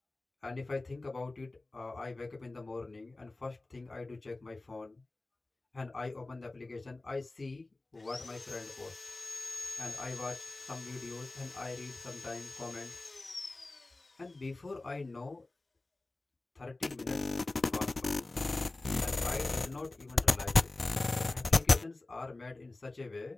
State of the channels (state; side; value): quieter; right; 3.1 dB